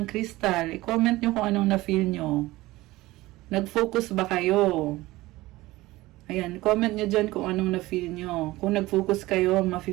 crystal? I-comment nyo kung anong na-feel nyo. Nag-focus ba kayo? Ayan, comment nyo dyan kung anong na-feel nyo. Kung nag-focus kayo,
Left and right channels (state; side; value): quieter; left; 18.8 dB